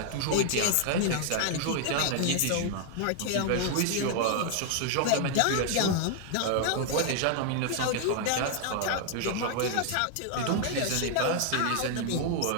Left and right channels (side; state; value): both; different; correlation 0.00